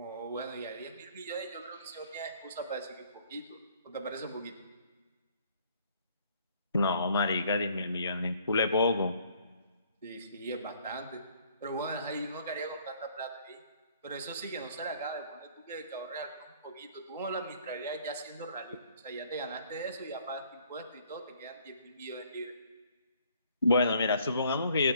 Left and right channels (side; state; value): both; inverted; correlation -0.61